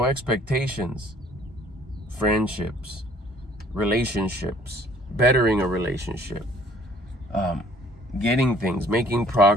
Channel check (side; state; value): both; normal; correlation 0.56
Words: expectations, friendships, relationships, bettering a relationship, getting things, making